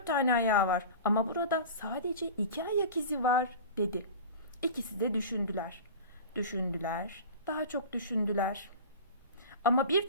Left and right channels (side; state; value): both; inverted; correlation -0.34